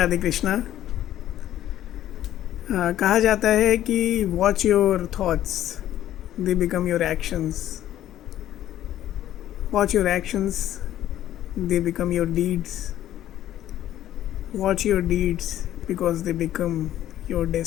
कृष्णा। कहा जाता है कि watch your thoughts, they become your actions. Watch your actions, they become your deeds. Watch your deeds because they become your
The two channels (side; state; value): right; quieter; 12.5 dB